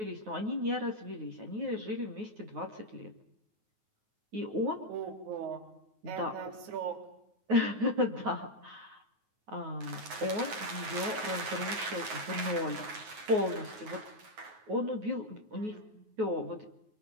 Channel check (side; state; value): left; late; 9.4 ms